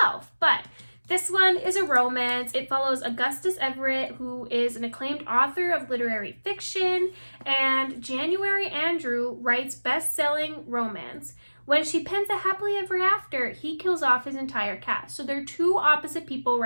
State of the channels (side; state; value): both; inverted; correlation -1.00